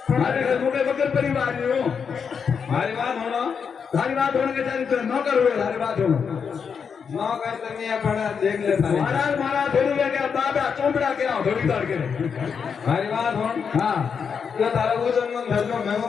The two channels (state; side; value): quieter; right; 6.4 dB